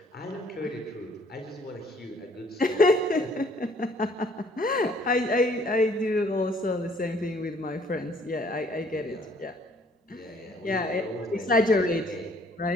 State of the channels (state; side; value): normal; both; correlation 0.61